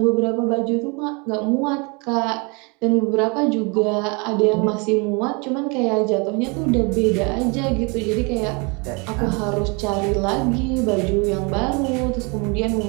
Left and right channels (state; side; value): quieter; left; 30.7 dB